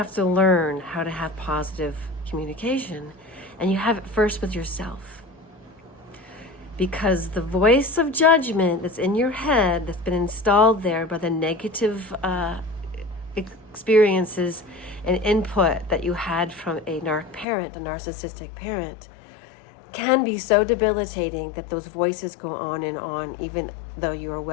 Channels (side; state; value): right; drops out; at 17.4 s